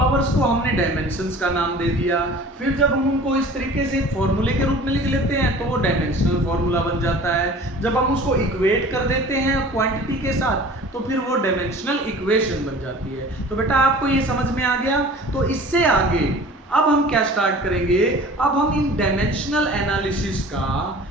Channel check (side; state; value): both; normal; correlation 0.43